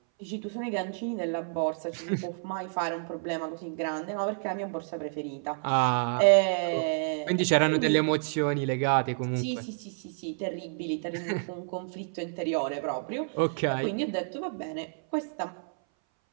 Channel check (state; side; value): silent; left; 58 dB below the other